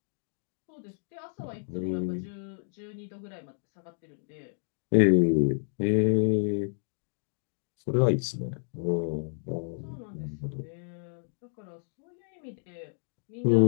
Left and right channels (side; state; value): right; silent; digital silence